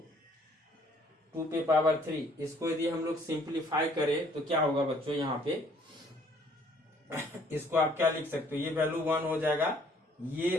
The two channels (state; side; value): normal; both; correlation 0.61